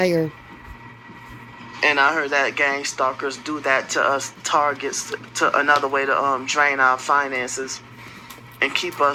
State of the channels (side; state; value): both; identical; correlation 1.00